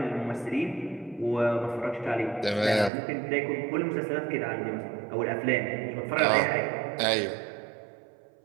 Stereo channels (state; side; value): drops out; left; at 2.9 s